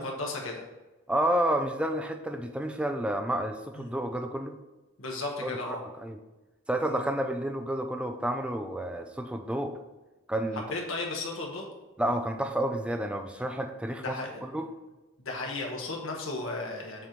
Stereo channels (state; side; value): normal; both; correlation 0.64